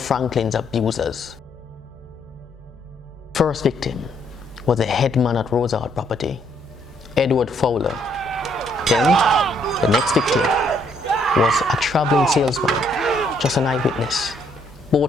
abusers. First victim was the headman at Rosard property, Edward Fowler. Then, the next victim was a traveling salesman, just an eyewitness.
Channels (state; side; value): normal; both; correlation 0.70